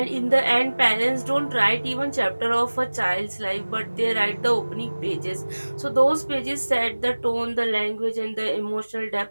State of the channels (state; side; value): inverted; both; correlation -1.00